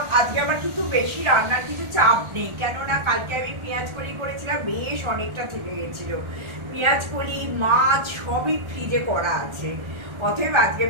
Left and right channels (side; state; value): left; late; 1.4 ms